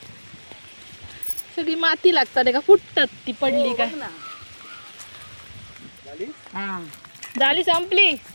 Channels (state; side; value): inverted; both; correlation -1.00